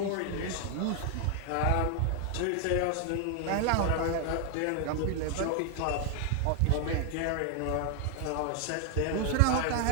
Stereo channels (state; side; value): different; both; correlation 0.00